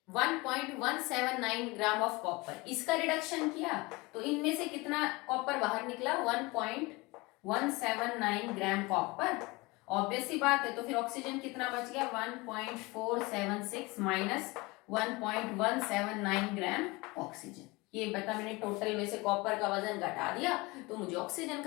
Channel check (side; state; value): right; quieter; 23.9 dB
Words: 1.179 gram of copper. इसका रिडक्शन किया तो इनमें से कितना कॉपर बाहर निकला? 1.179 ग्राम कॉपर। ऑब्वियस सी बात है, तो फिर ऑक्सीजन कितना बच गया? 1.476 माइनस 1.179 ग्राम ऑक्सीजन। ये बता, मैंने टोटल में से कॉपर का वजन घटा दिया तो मुझे ऑक्सीजन